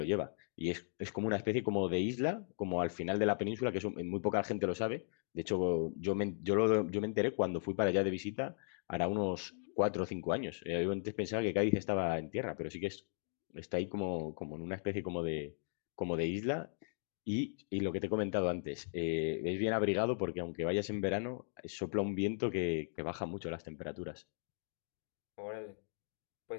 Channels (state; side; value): silent; right; digital silence